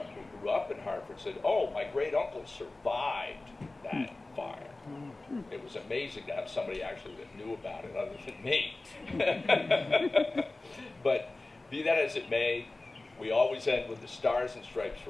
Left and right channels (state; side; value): quieter; right; 3.1 dB